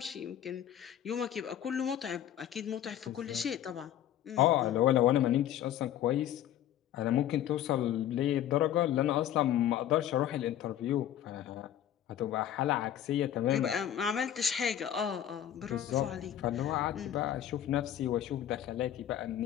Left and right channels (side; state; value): right; quieter; 11.2 dB